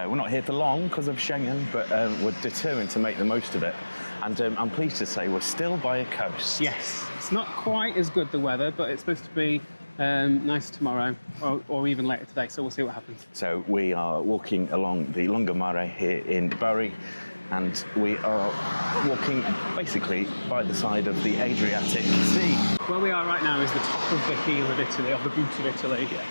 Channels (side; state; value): both; inverted; correlation -1.00